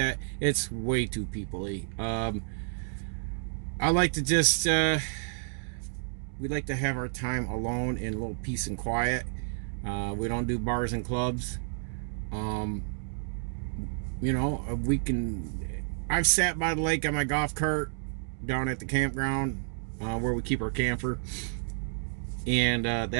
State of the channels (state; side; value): silent; left; digital silence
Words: it's way too people-y. I like to just we like to have our time alone in a little peace and quiet. We don't do bars and clubs. You know, I've sat by the lake on my golf cart down at the campground where we keep our camper, and